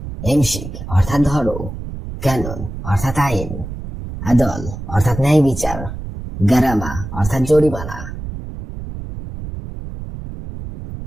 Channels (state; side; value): noise; right; rumble, 9 dB below the sound